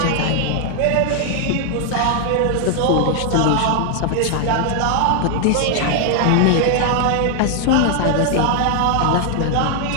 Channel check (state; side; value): different; both; correlation 0.00